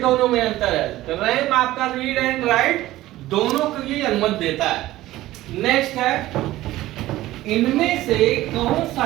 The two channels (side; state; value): left; quieter; 16.0 dB